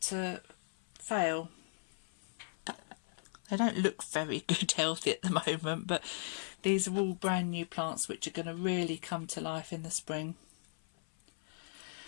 fail. They don't look very good healthy at the moment, but these are all brand new plants which are going to really come to life in the spring.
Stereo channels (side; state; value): right; silent; 53 dB below the other